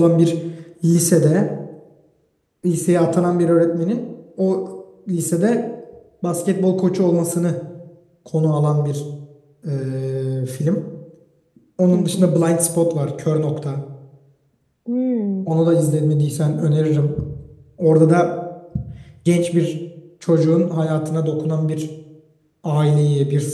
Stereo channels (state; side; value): identical; both; correlation 1.00